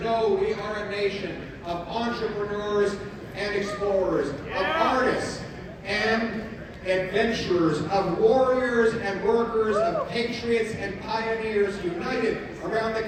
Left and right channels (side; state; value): both; identical; correlation 1.00